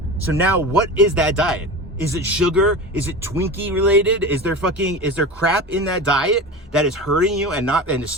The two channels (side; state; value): both; normal; correlation 0.29